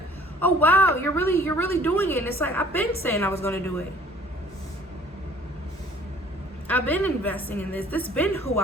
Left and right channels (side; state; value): both; normal; correlation 0.54